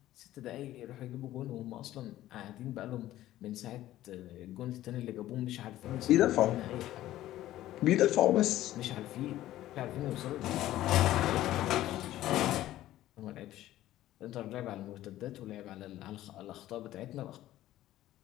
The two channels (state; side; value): quieter; right; 14.4 dB